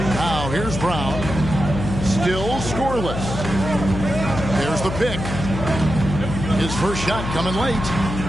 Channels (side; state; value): left; noise; hum, 5 dB below the sound